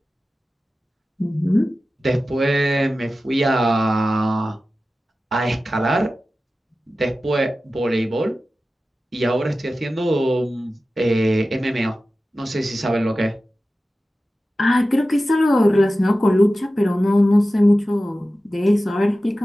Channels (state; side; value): normal; both; correlation 0.94